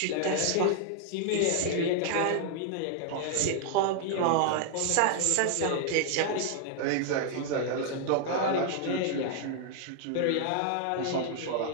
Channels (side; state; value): both; different; correlation 0.00